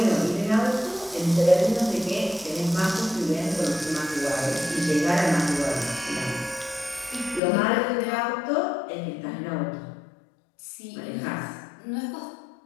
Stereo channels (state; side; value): drops out; right; at 7.4 s